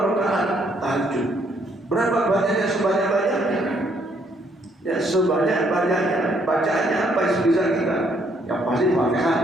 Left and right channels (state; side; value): normal; both; correlation 0.69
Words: rakaat tahajud. Berapa banyaknya? Sebanyak-banyaknya. Ya sebanyak-banyaknya. Bacaannya apa yang bisa kita? Yang pasti Fatihah